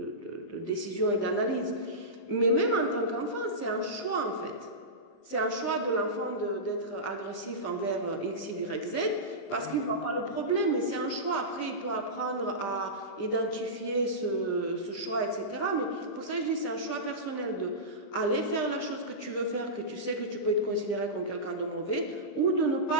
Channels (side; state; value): right; late; 21 ms